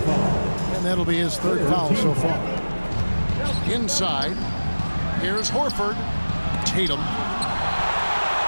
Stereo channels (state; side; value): inverted; both; correlation -1.00